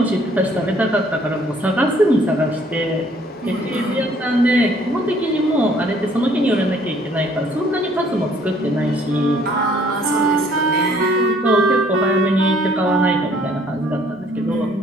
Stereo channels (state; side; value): normal; both; correlation 0.60